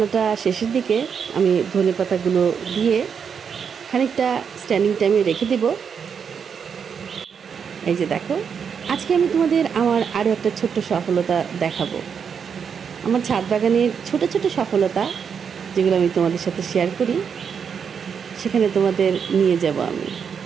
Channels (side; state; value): left; quieter; 6.8 dB